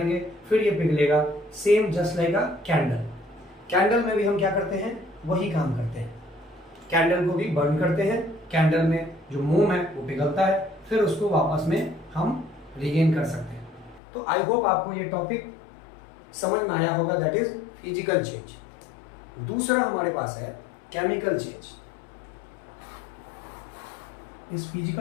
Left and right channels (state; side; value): drops out; right; at 14.0 s